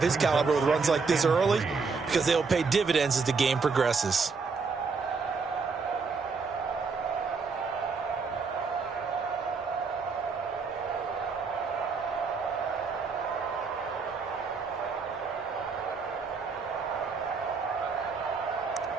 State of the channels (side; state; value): left; quieter; 4.9 dB